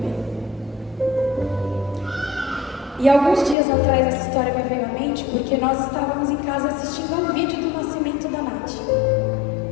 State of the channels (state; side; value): drops out; right; at 3.6 s